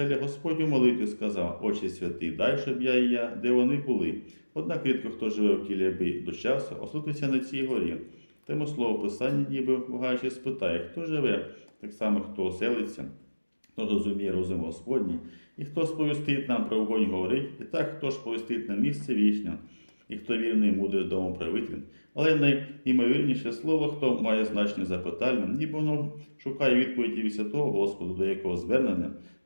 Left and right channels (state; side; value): inverted; both; correlation -1.00